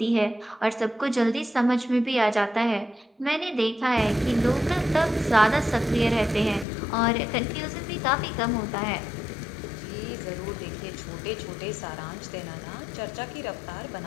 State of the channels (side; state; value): right; drops out; at 6.7 s